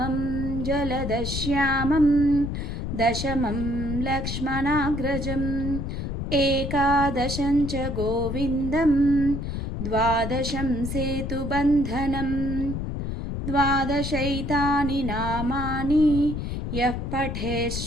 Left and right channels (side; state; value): left; noise; rumble, 4 dB below the sound